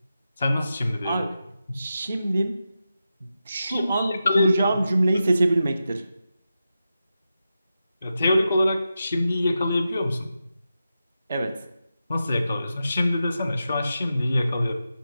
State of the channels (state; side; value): inverted; both; correlation -0.90